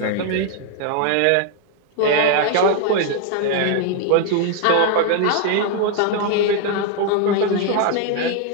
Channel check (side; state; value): both; different; correlation 0.00